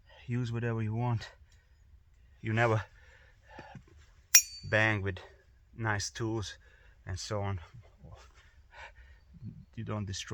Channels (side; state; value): both; identical; correlation 1.00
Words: use whatever you want. You never bang with nice tools and so on. You don't